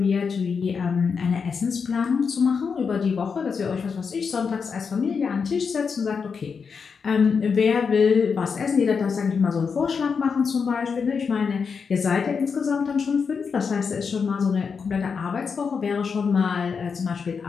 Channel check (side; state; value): right; quieter; 5.8 dB